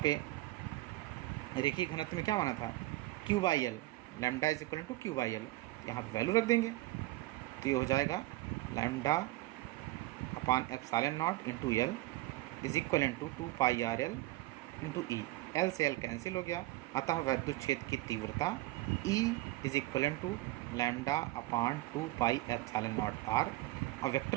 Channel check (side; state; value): left; quieter; 18.2 dB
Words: पे रेखीय घनत्व में क्या माना था? Q/L। Lambda is equal to Q/L। यहाँ पे वैल्यू रख देंगे तो ये हो जाएगा λ/ε0 into L is equal to 2πRL into E। L से L कैंसिल हो गया। अतः वैद्युत क्षेत्र की तीव्रता E is equal to λ/2πε0R। और